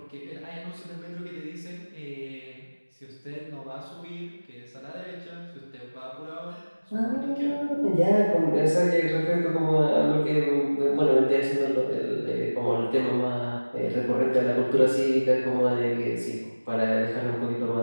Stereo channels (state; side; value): inverted; both; correlation -1.00